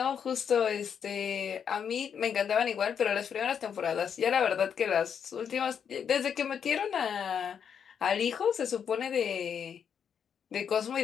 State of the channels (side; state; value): right; quieter; 7.6 dB